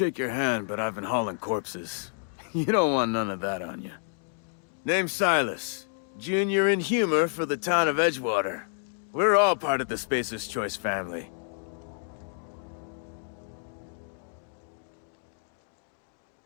your hand, but I've been hauling corpses. You don't want none of that on you. Name's Silas. Junior in humor for the town of Edgewater. We're all part of the Spacer's Choice family.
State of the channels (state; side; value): silent; right; digital silence